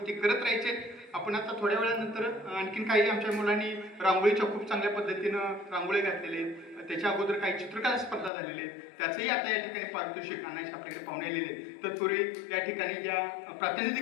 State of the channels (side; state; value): right; drops out; at 8.3 s